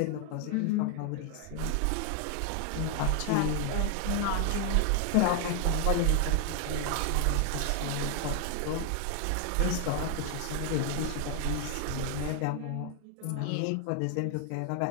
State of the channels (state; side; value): different; both; correlation 0.00